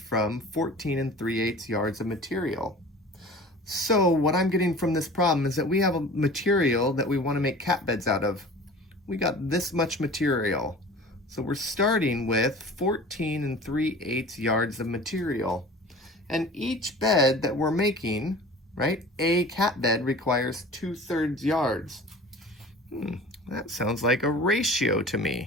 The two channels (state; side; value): normal; both; correlation 0.41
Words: 14 3/8 yards of material? So what I'm getting from this problem is that we have a material that we want to make cat beds out of. We got this much material. So we're starting with 14 3/8 yards of material. And each bed that we're making, right, a cat bed requires 2/3 yards. That sounds like a ratio to